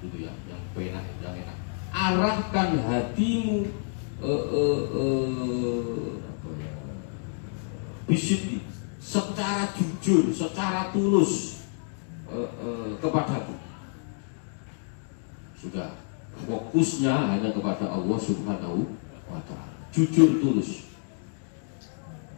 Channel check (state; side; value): silent; right; 59 dB below the other